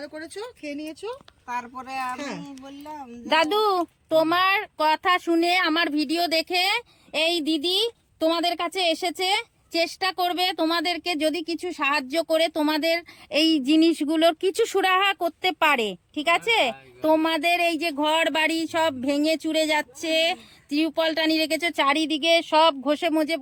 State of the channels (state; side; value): identical; both; correlation 1.00